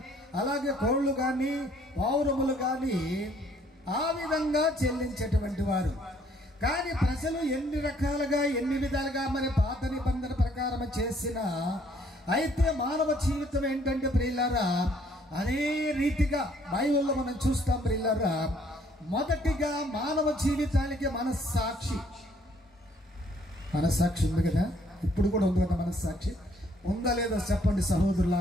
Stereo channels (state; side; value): normal; both; correlation 0.63